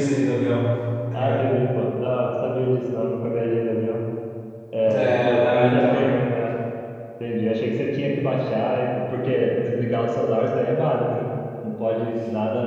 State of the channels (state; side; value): identical; both; correlation 1.00